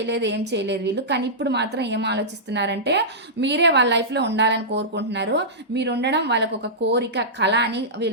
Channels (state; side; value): normal; both; correlation -0.15